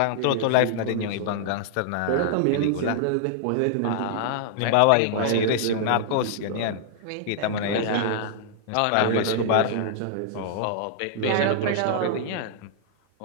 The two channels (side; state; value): both; different; correlation -0.01